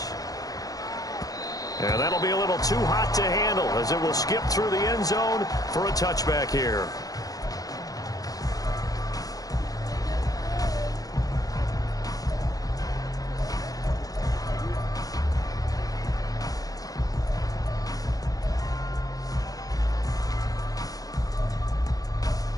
And that'll be a little too hot to handle, as it will skip through the end zone for a touchback here.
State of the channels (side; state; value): right; late; 0.18 ms